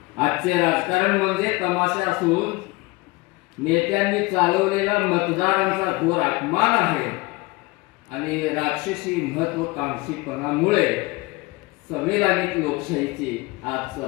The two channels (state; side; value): quieter; right; 23.2 dB